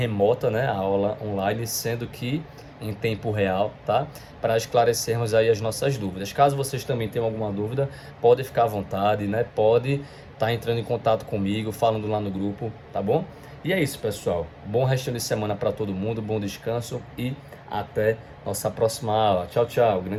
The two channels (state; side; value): identical; both; correlation 1.00